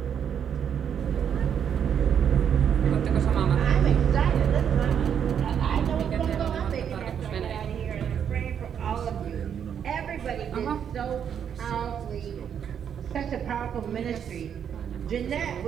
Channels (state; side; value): quieter; left; 8.3 dB